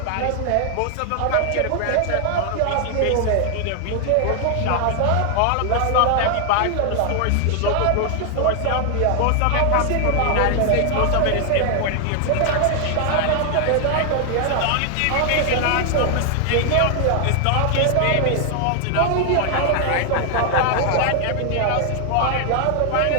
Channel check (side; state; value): both; different; correlation 0.00